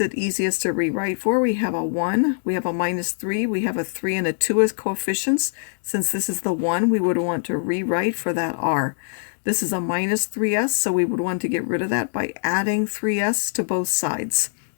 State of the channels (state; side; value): silent; right; digital silence